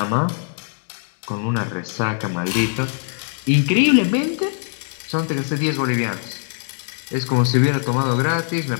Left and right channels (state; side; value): silent; right; digital silence